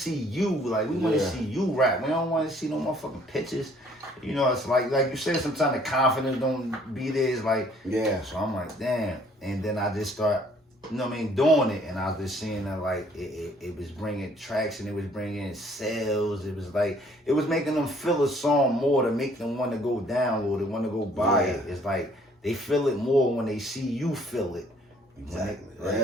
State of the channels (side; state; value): both; normal; correlation 0.60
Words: you. Like, we want to see you rap. We don't want to see no motherfucking pictures. It's like you said, sometimes the confidence don't be there. It's like, so I'm like, damn. And then I just start you know what I mean, doing it, and I was just seeing that like it was bringing traction, it was bringing sales, it was like it was making them feel a song more to make them want to go download it, want to go buy it. It's like they feel it more when they see you feel it. Exactly. Right?